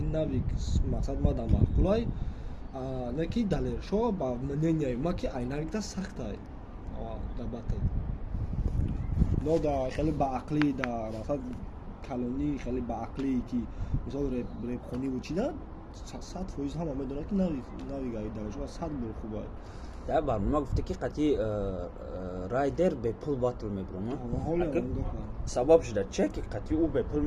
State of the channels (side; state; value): both; identical; correlation 1.00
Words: навик мақсад ма да мақулай на ки далешо ба мнение ма ки айнак да сахтай да батл но да хеле ба ақли да мақсад калони хеле ба ақлӣ ки мисол репхонӣ вучида 100% ҳама медонад ки навигаи далешо 100 бор хуба дар барнома гуфта ки қати райдер бе пул батл мебурам сабаб шуда че ки қати ӯ бе пул